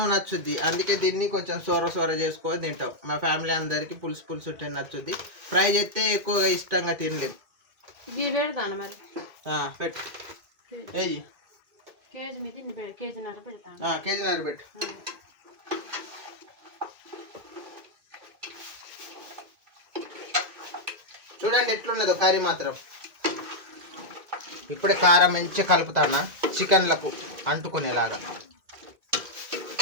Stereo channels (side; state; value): left; late; 2.2 ms